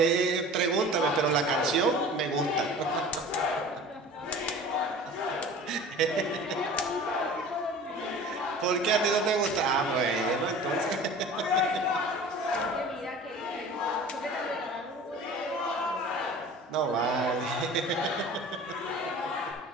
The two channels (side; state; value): both; normal; correlation 0.41